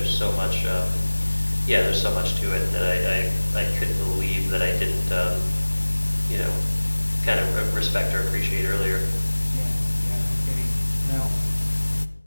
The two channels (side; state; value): both; inverted; correlation -1.00